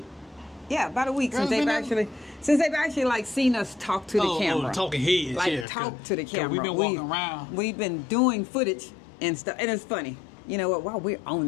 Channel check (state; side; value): drops out; right; at 5.7 s